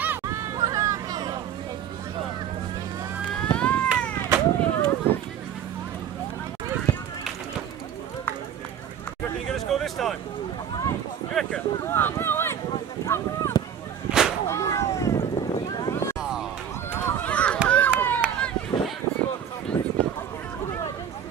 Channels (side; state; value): left; quieter; 8.9 dB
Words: You reckon you're going to score this time? You reckon? Come on, Owen! Come on!